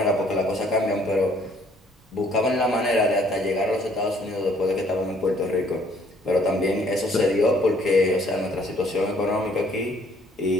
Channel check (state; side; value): normal; both; correlation 0.62